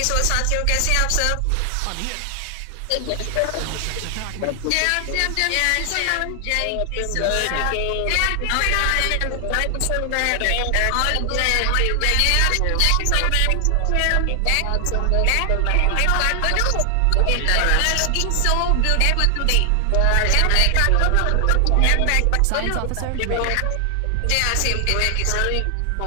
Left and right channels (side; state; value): both; different; correlation 0.00